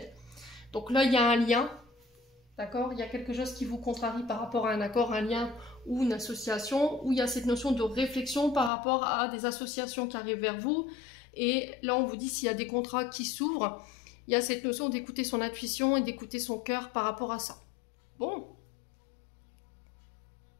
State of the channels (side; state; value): right; drops out; at 8.7 s